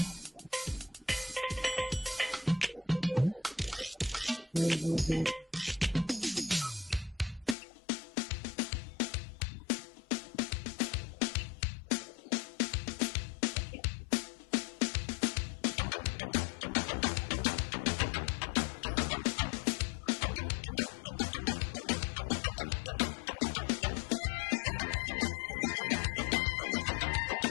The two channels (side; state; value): right; drops out; at 7.6 s